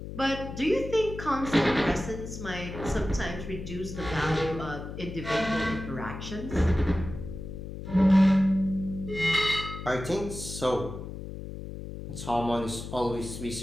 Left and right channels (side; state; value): left; noise; hum, 9 dB below the sound